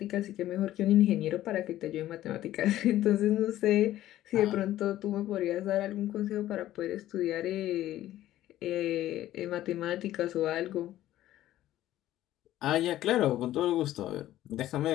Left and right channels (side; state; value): right; quieter; 13.9 dB